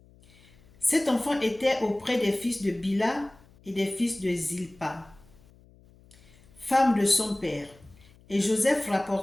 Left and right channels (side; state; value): left; noise; hum, 27 dB below the sound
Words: Cet enfant était auprès des fils de Bila et des fils de Zilpa, femme de son père, et Joseph